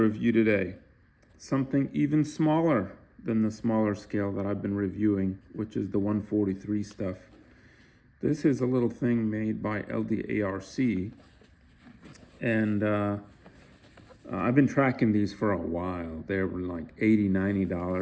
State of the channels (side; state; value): both; identical; correlation 1.00